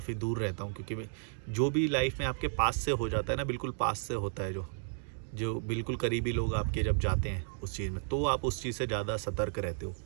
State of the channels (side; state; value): left; silent; digital silence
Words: दूर रहता हूँ, क्योंकि जो भी लाइफ में आपके पास से हो जाता है ना, बिल्कुल पास से होता है, जो जो बिल्कुल करीबी लोग आपके जब जाते हैं उस चीज़ में, तो आप उस चीज़ से ज़्यादा सतर्क रहते हो।